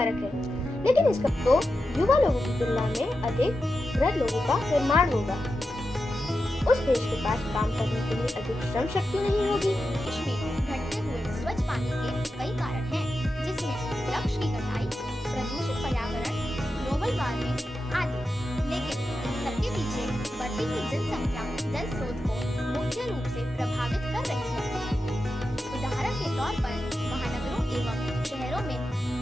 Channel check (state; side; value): normal; both; correlation 0.90